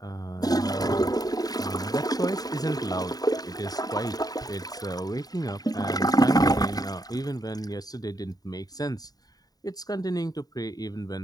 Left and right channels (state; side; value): late; right; 0.18 ms